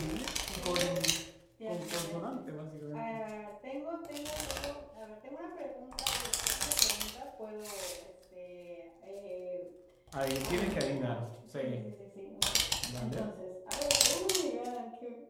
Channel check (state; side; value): identical; both; correlation 1.00